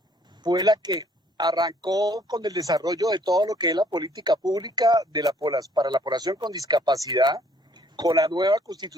fue la que arrancó con el desarrollo de todo lo que es la política pública para la población con discapacidad, con la nueva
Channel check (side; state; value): both; normal; correlation 0.62